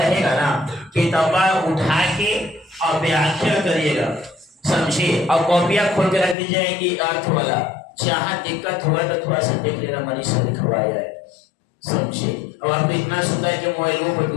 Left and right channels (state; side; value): drops out; right; at 6.4 s